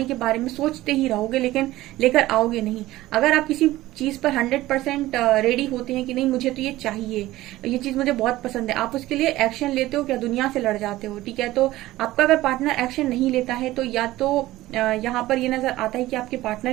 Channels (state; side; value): quieter; left; 16.7 dB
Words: के बारे में सोचते ही रहोगे, लेकिन लेकर आओगे नहीं। अगर आप किसी चीज पर 100% रेडी होते हैं कि नहीं मुझे तो ये चाहिए, ये चीज मुझे बहुत पसंद है, आप उसके लिए एक्शन लेते हो क्या, दुनिया से लड़ जाते हो, ठीक है। तो आपका अगर पार्टनर एक्शन नहीं लेता है तो या तो यहाँ पर ये नजर आता है कि आपके पार्टनर